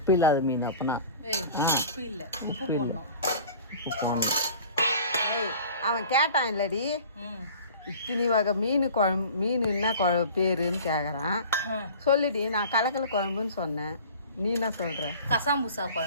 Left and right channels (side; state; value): both; inverted; correlation -0.43